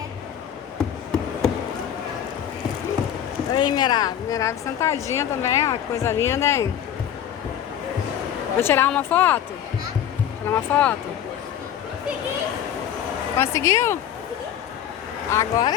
Aí, Mirab. Mirab sentadinha também, ó. Que coisa linda, hein? Vou tirar uma foto? Tirar uma foto? Conseguiu? Agora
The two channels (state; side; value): quieter; right; 9.9 dB